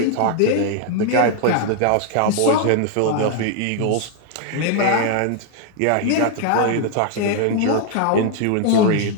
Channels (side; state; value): both; different; correlation 0.00